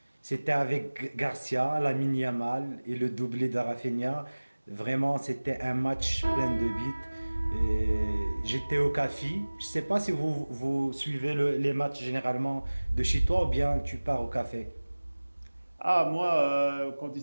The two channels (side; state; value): both; inverted; correlation -1.00